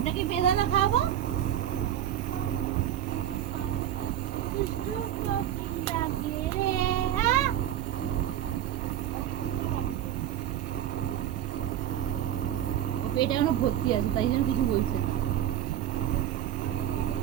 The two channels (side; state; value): left; quieter; 11.4 dB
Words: কি বেদানা খাবো? দুষ্টু কোকিল ডাকে রে। হ্যাঁ, এটা এখনো ভর্তি আছে, তাই জন্য কিছু বলছে না।